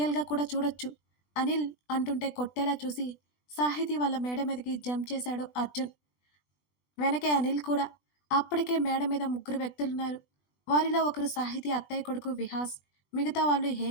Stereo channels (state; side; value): late; right; 20 ms